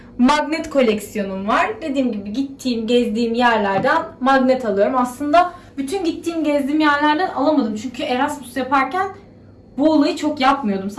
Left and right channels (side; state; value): both; identical; correlation 1.00